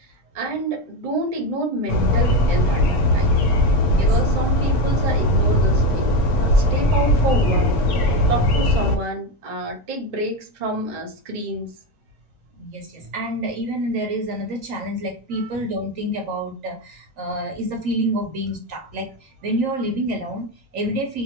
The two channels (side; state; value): both; normal; correlation 0.15